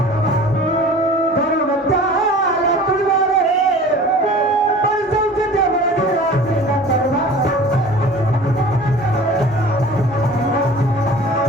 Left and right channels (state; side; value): normal; both; correlation 0.43